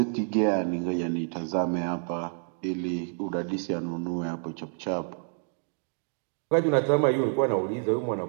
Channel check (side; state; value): left; silent; 59 dB below the other